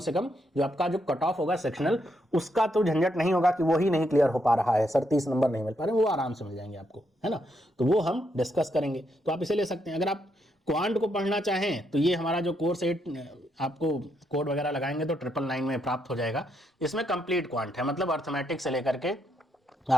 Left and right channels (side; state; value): both; normal; correlation 0.78